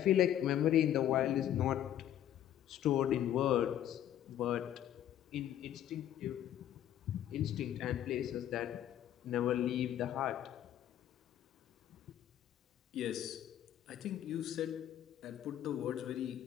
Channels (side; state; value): right; quieter; 11.2 dB